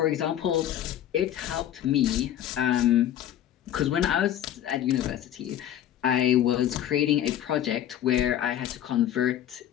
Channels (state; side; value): quieter; right; 11.3 dB